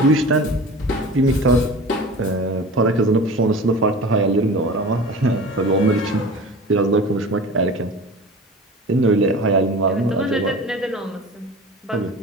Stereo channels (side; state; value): both; normal; correlation 0.37